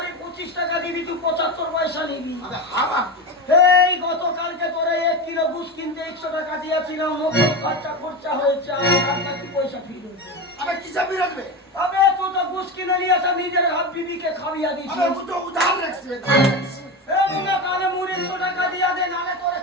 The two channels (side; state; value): both; normal; correlation 0.20